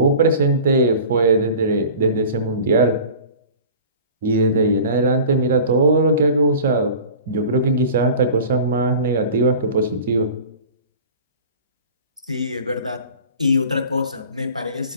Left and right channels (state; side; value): inverted; both; correlation -0.41